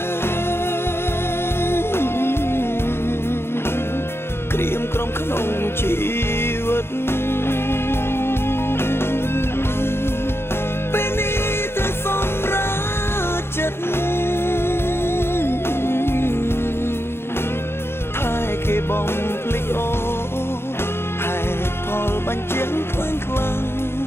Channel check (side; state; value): right; late; 0.12 ms